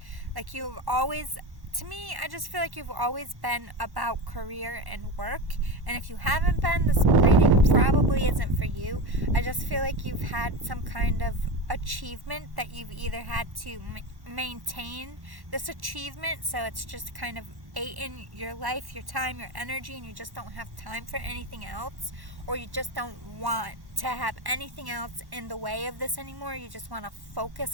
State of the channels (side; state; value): left; late; 1.1 ms